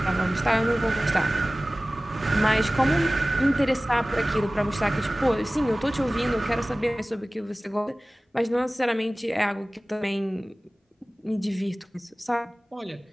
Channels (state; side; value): normal; both; correlation 0.98